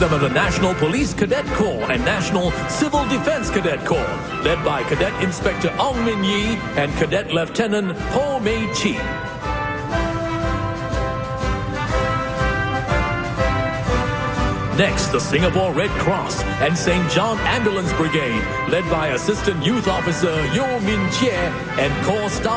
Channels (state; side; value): identical; both; correlation 1.00